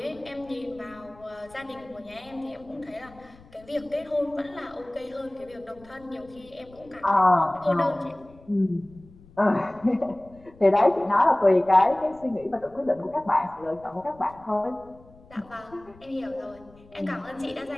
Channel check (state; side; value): noise; left; rumble, 24 dB below the sound